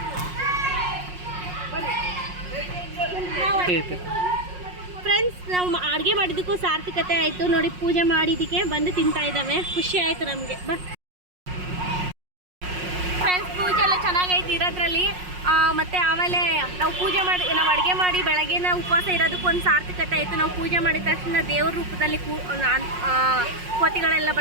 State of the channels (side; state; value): left; late; 5.5 ms